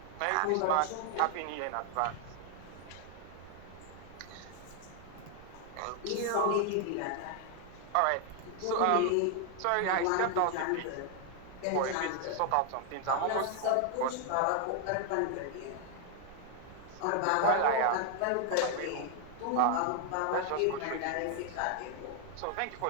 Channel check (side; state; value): both; different; correlation 0.00